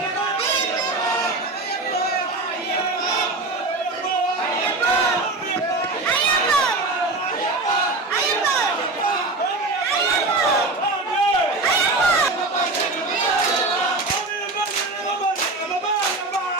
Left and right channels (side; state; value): left; quieter; 3.2 dB